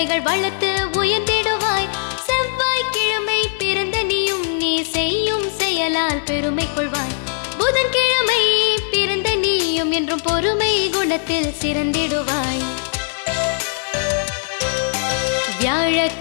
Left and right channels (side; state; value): right; silent; digital silence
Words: வளர்த்து உயர்ந்திடுவாய். செவ்வாய்க்கிழமை பிறந்த நீயும் நீ செய்யும் செயலால் பெருமை கொள்வாய். புதன்கிழமை பிறந்த நீயும் என்று பொறுமை குணத்தில் சிறந்திடுவாய்.